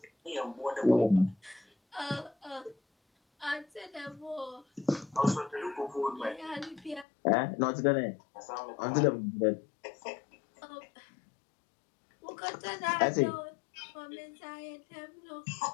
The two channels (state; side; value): drops out; right; at 7.1 s